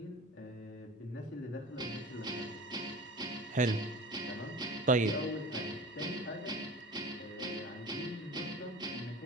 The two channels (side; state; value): both; normal; correlation 0.36